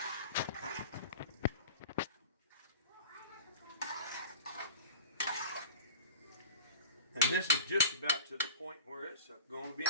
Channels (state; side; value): inverted; both; correlation -0.38